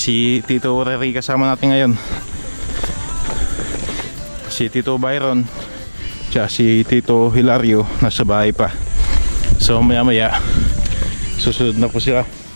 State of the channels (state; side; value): inverted; both; correlation -1.00